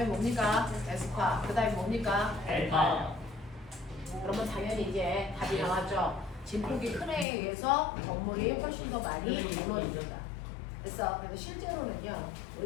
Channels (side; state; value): right; drops out; at 7.2 s